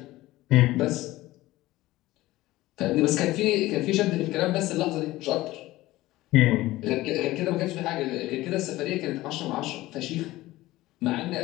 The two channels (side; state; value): right; quieter; 17.5 dB